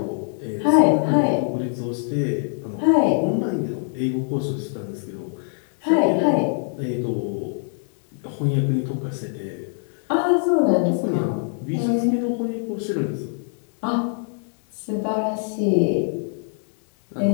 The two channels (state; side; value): silent; right; 61 dB below the other